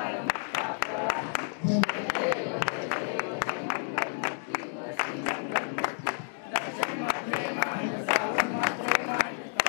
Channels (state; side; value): silent; right; 58 dB below the other